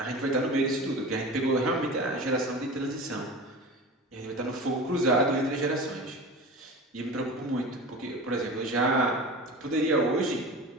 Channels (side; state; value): both; normal; correlation 0.33